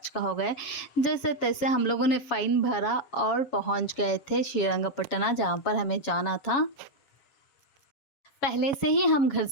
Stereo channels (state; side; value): late; right; 7.2 ms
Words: हो गया। जैसे तैसे हम लोगों ने फ़ाइन भरा और पहुंच गए थे श्रीरंगपट्टना, जहाँ पर हमें जाना था। पहले से ही हम घर